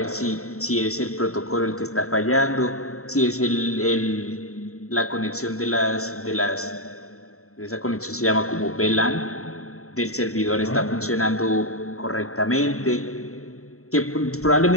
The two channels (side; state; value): right; late; 0.64 ms